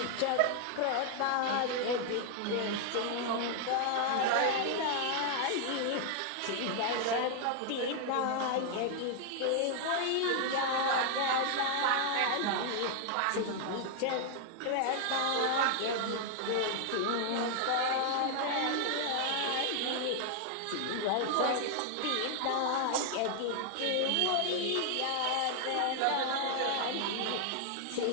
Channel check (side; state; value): both; different; correlation 0.00